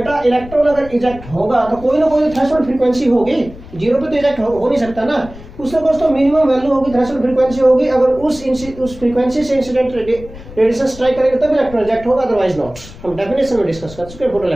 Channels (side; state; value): left; noise; rumble, 17 dB below the sound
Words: इलेक्ट्रॉन अगर इजेक्ट होगा तो कोई ना कोई थ्रेशोल्ड फ्रीक्वेंसी होगी, जीरो पे तो इजेक्ट हो नहीं सकता ना, उससे कुछ तो मिनिमम वैल्यू होगी, थ्रेशोल्ड फ्रीक्वेंसी होगी, अगर उस फ्रीक्वेंसी से इंसिडेंट रेडिएशन स्ट्राइक करेंगे तब इलेक्ट्रॉन इजेक्ट होगा, अदरवाइज नॉट। हम डेफिनेशन में डिस्कस कर चुके हैं फोटो